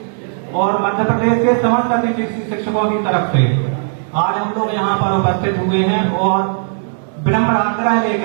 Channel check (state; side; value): silent; left; digital silence